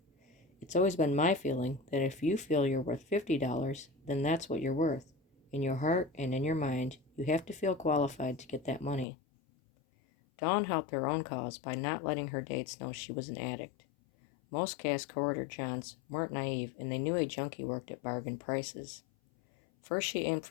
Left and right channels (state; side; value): drops out; right; at 9.1 s